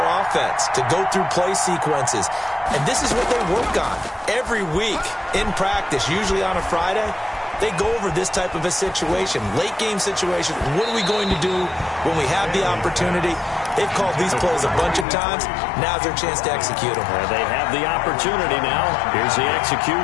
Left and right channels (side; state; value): right; drops out; at 15.1 s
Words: offense, to go through play sequences. And this is what they work on every week in practice, usually on a Friday. They go over this type of a situation, late game situation. What are we going to do when we have the opportunity? They've called these plays a bunch of times. Now's their chance to execute them. They have the opportunity now. Here's the